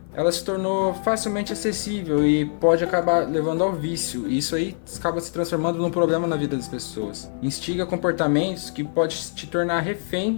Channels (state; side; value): silent; right; 56 dB below the other